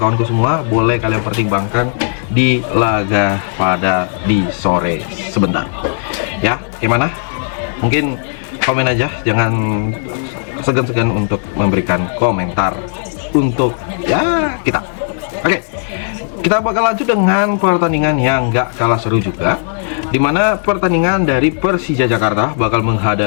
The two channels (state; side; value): silent; right; digital silence